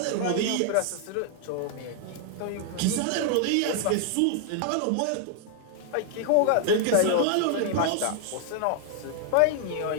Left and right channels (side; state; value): both; different; correlation 0.00